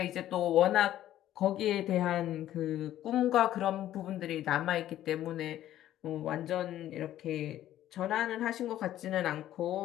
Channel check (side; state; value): right; quieter; 12.7 dB